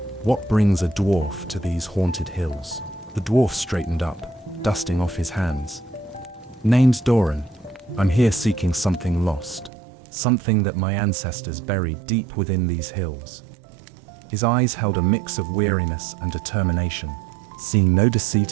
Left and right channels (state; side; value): drops out; left; at 9.7 s